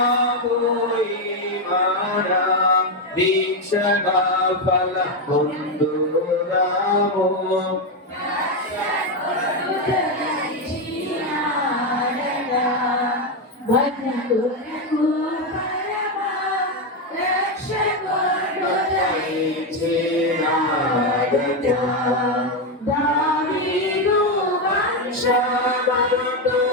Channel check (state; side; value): normal; both; correlation 0.07